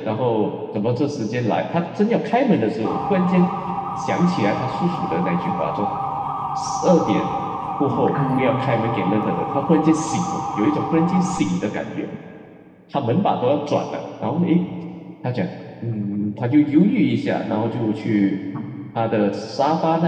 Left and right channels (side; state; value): both; identical; correlation 1.00